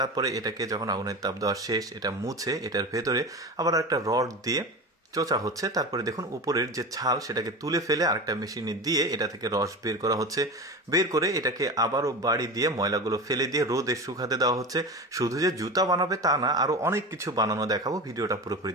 এটাকে যখন আগুনের তাপ দেওয়া শেষ, এটা মুছে এটার ভেতরে আবার একটা রড দিয়ে চোচা হচ্ছে। তারপরে দেখুন, উপরের যে ছাল সেটাকে তুলে ফেলে আরেকটা মেশিনে দিয়ে এটা থেকে রস বের করা হচ্ছে। বের করে এটাকে আবারও বাড়ি দিয়ে ময়লাগুলো ফেলে দিয়ে রোদে শুকাতে দেওয়া হচ্ছে। শুধু যে জুতা বানাবে তা না, আরো অনেক কিছু বানানো দেখাবো, ভিডিওটা পুরোপুরি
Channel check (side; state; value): both; normal; correlation 0.28